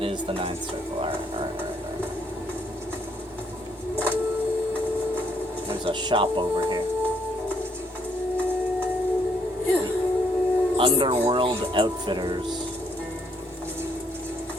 is the ninth circle. Alright. There's a shop over here. Underworld Outfitters.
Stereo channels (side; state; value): both; normal; correlation 0.70